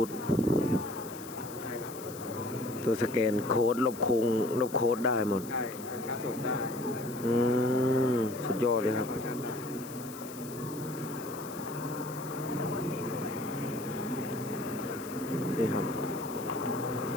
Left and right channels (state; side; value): noise; left; hiss, 15 dB below the sound